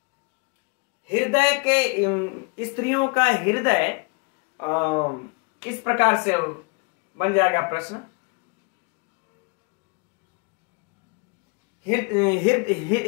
हृदय के, स्त्रियों का हृदय इस प्रकार से बन जाएगा प्रश्न।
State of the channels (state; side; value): quieter; right; 30.7 dB